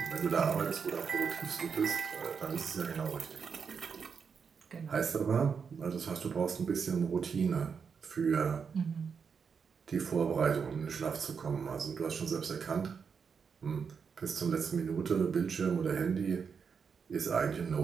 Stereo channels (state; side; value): quieter; left; 6.1 dB